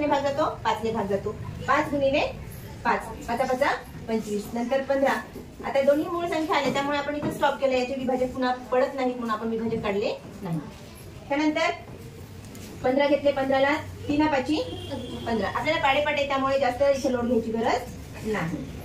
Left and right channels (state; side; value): identical; both; correlation 1.00